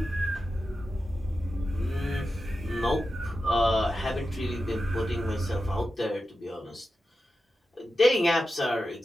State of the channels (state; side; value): normal; both; correlation 0.91